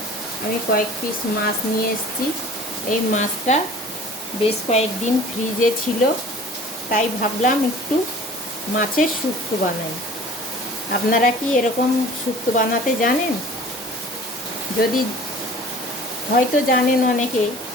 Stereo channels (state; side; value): normal; both; correlation 0.46